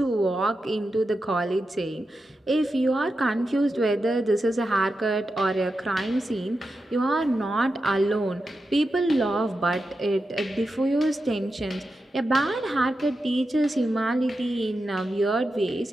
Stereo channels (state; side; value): normal; both; correlation 0.89